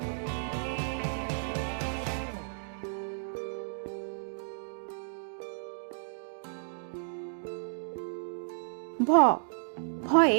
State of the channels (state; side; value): silent; left; digital silence